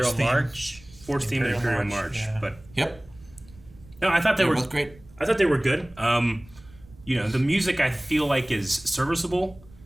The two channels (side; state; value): right; noise; rumble, 23 dB below the sound